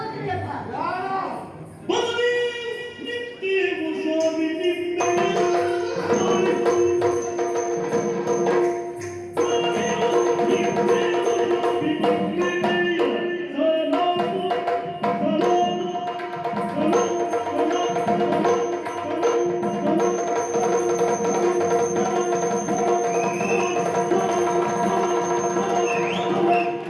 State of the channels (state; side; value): identical; both; correlation 1.00